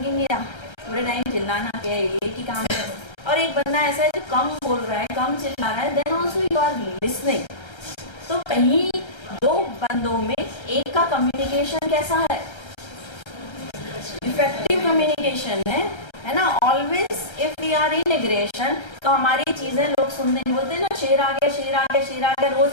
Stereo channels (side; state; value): right; late; 1.3 ms